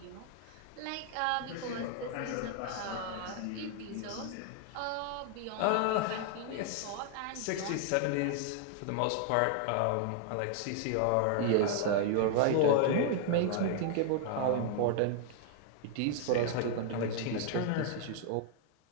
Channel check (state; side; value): different; both; correlation 0.00